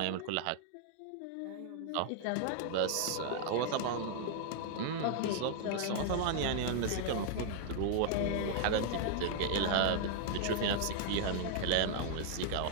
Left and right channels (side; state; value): both; different; correlation 0.00